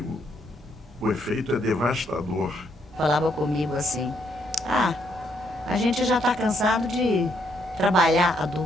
o efeito é devastador. Falava comigo assim, a gente já está cansado de trabalhar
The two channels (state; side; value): normal; both; correlation 0.73